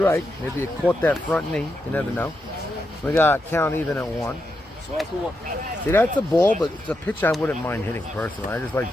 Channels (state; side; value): normal; both; correlation 0.85